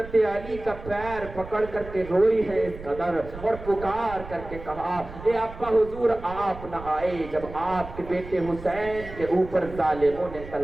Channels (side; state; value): right; noise; rumble, 14 dB below the sound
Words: अली का पैर पकड़ करके रोई है इस कदर और पुकार करके कहा ए अब्बा हुजूर आप न आए जब आपके बेटे हुसैन के ऊपर ज़ालिमों ने